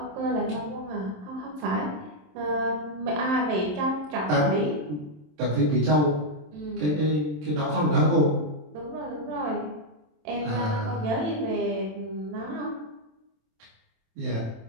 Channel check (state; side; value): late; left; 27 ms